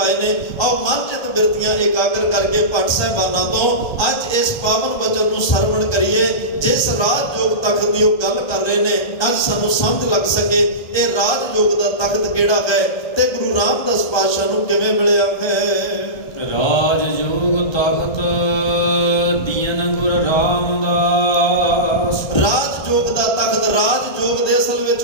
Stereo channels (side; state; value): right; late; 1.3 ms